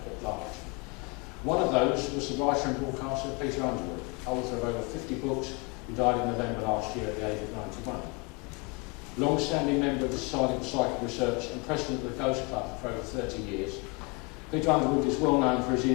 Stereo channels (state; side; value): quieter; right; 28.9 dB